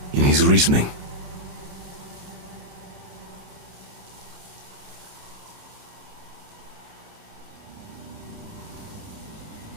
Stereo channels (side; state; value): left; late; 28 ms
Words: in his reasoning.